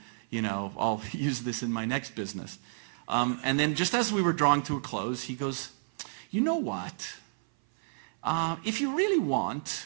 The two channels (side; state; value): left; silent; 57 dB below the other